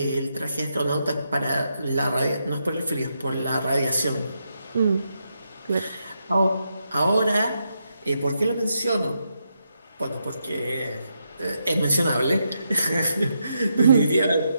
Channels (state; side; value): inverted; both; correlation -0.82